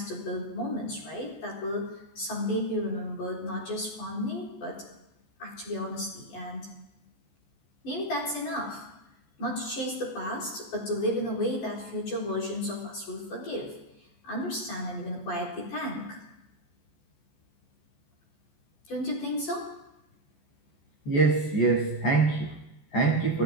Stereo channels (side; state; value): right; late; 14 ms